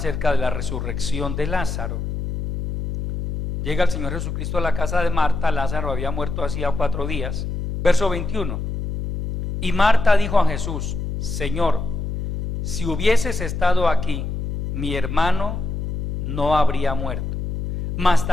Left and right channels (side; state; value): left; noise; hum, 3 dB below the sound